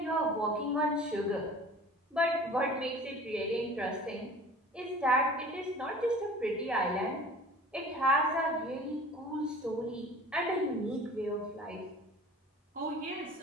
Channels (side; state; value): both; normal; correlation 0.43